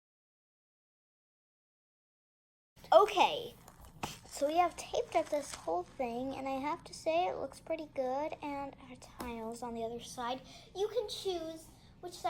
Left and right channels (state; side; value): identical; both; correlation 1.00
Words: Okay, so we have taped up this whole thing, and I have to say it looks pretty good, and our tiles on the other side. You can choose which